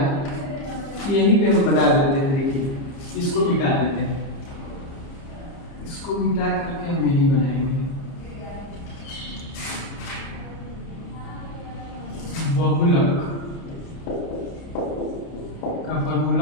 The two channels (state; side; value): late; right; 30 ms